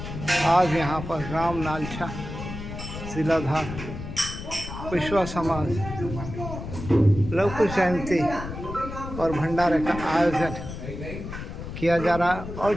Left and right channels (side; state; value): left; noise; rumble, 9 dB below the sound